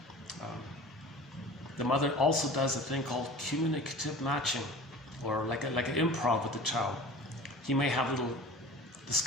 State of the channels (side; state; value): both; normal; correlation 0.39